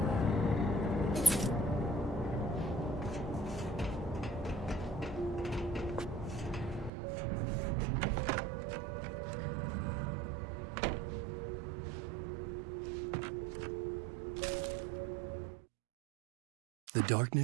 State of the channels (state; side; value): drops out; left; at 6.9 s